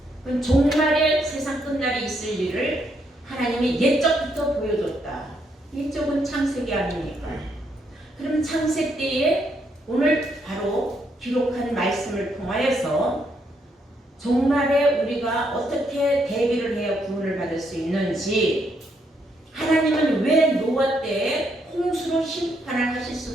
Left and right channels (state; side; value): normal; both; correlation 0.75